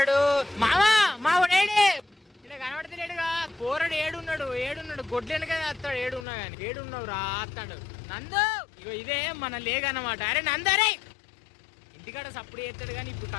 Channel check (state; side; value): drops out; right; at 6.2 s